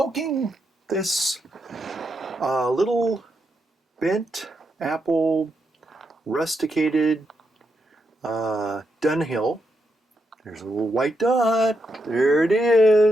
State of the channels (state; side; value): normal; both; correlation 0.82